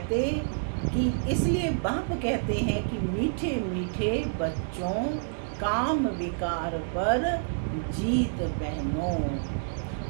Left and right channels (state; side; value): silent; left; digital silence